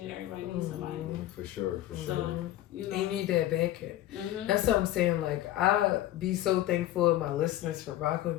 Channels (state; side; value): quieter; right; 14.2 dB